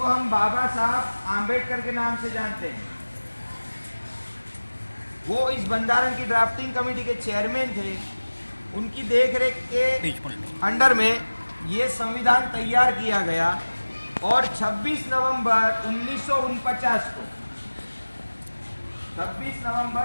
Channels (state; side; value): inverted; both; correlation -1.00